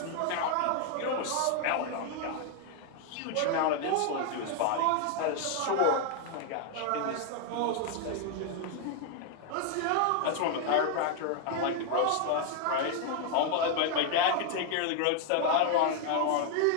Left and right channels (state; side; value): different; both; correlation 0.00